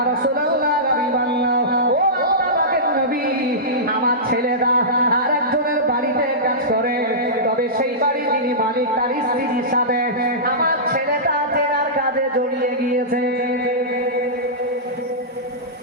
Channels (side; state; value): both; normal; correlation -0.17